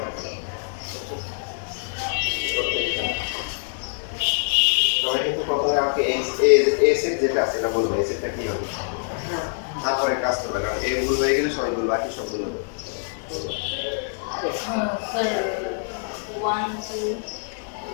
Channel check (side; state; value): right; silent; digital silence